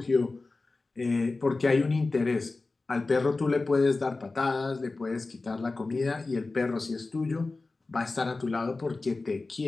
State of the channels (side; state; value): right; quieter; 3.5 dB